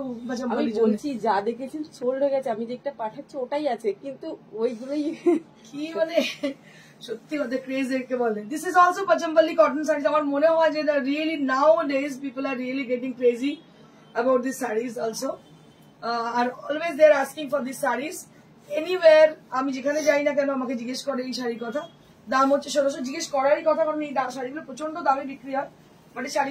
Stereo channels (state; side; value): identical; both; correlation 1.00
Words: আমি বলছি যা দেখেছি সোল্ড হয়ে গেছে, আমি যেটা পাঠাচ্ছি ওটাই আছে, কিন্তু ওইগুলোই কি মানে সত্যি কথা ক্রেজ একে বলে। This is also Pochampally cotton saris. আমার মনে হয় যে really nowadays people are really getting crazy about this saris also, আর always they are asking for this saris anywhere. আমি যেখানে যাই না কেন আমাকে জিজ্ঞেস করে এই শাড়ির কথা। দাম হচ্ছে 1600, জিজ্ঞেস করারই কথা, কারণ এই শাড়িগুলো প্রচন্ড দামে বিক্রি হয়। বাট এই